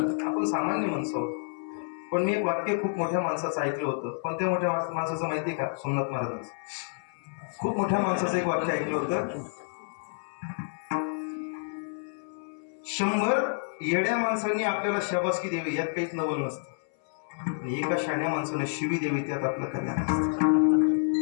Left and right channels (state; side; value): silent; right; 59 dB below the other